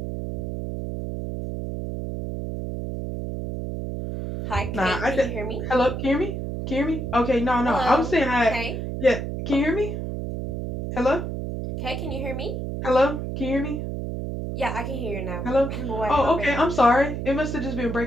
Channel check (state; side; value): noise; right; hum, 4 dB below the sound